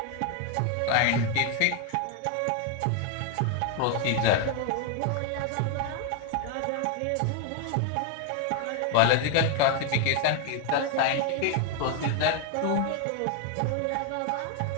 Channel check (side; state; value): both; different; correlation 0.00